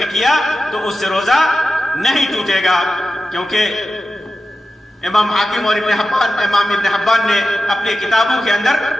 کیا تو اس سے روزہ نہیں ٹوٹے گا، کیونکہ امام حاکم اور امام ابن حبان نے اپنی کتابوں کے اندر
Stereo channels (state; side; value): normal; both; correlation 0.92